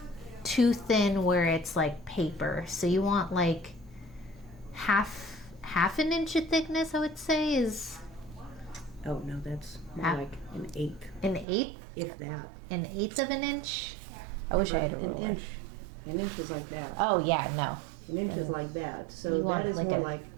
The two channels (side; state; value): left; drops out; at 11.5 s